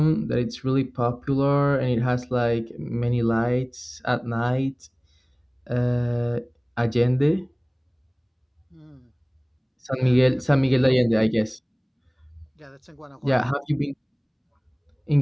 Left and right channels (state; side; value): identical; both; correlation 1.00